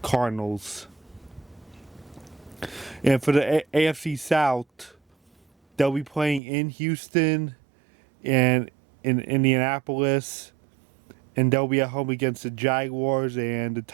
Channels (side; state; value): left; drops out; at 6.4 s